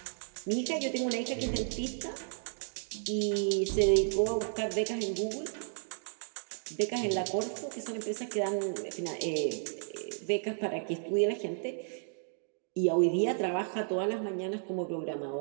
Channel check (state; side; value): silent; left; digital silence